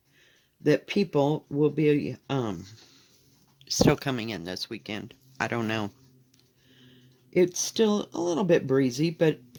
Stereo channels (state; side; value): identical; both; correlation 1.00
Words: that people will be still coming in this weekend. I don't know. It's still a little bit breezy, but,